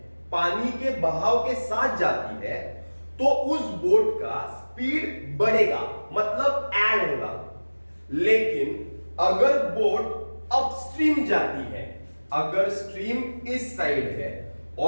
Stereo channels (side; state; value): both; inverted; correlation -1.00